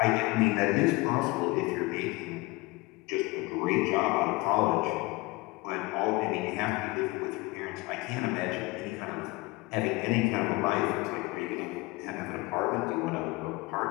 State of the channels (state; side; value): quieter; right; 23.2 dB